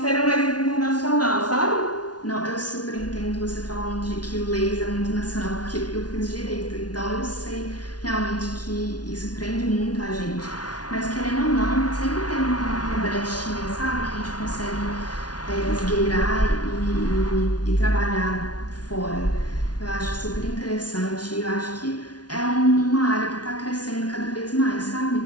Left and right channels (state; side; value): late; right; 0.69 ms